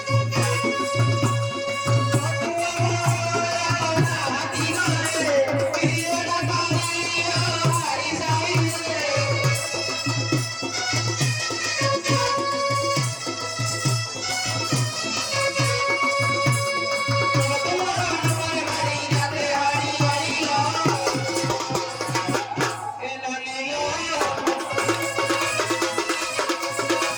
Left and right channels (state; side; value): identical; both; correlation 1.00